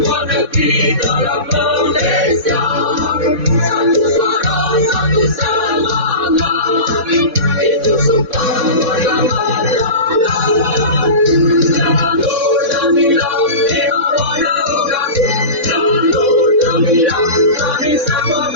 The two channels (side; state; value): left; late; 4.1 ms